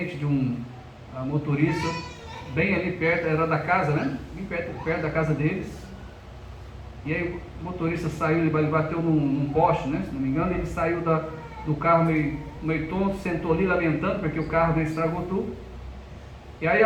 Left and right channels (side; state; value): both; identical; correlation 1.00